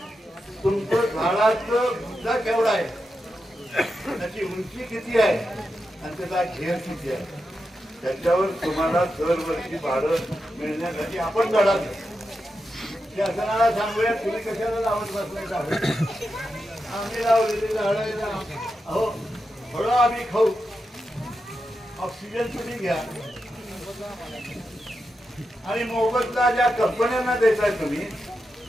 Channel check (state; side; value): normal; both; correlation 0.88